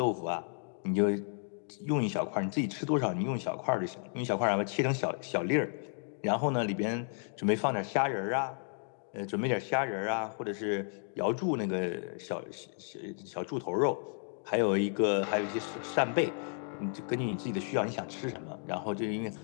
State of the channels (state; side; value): silent; right; 56 dB below the other